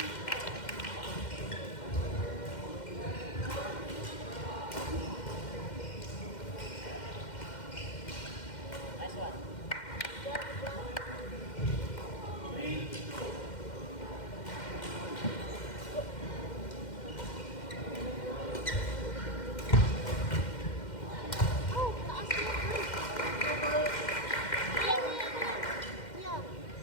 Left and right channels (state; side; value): late; right; 2.1 ms